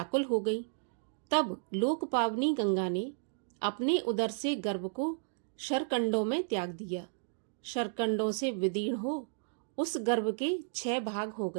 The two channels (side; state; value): left; silent; digital silence